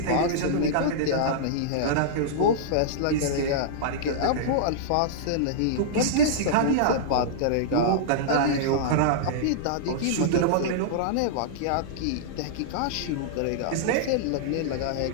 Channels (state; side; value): different; both; correlation -0.02